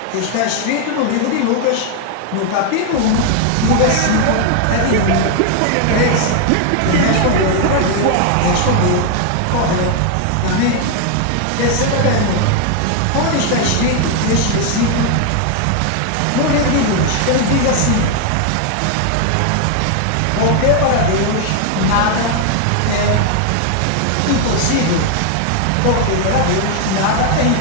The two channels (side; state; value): both; different; correlation 0.01